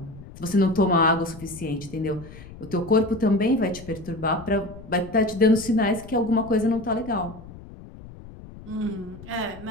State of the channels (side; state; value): left; noise; rumble, 16 dB below the sound